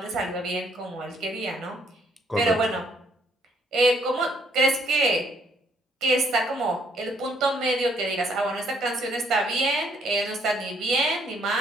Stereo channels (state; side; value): normal; both; correlation 0.68